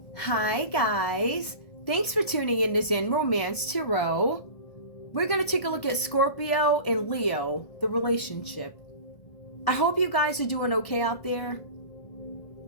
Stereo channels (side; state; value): right; late; 1.5 ms